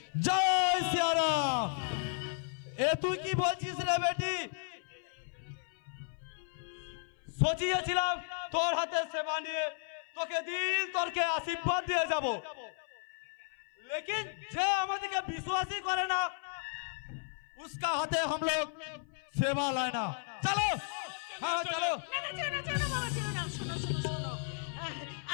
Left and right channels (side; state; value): right; silent; 55 dB below the other